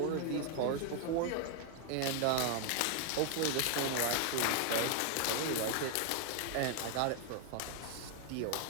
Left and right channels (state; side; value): different; both; correlation 0.00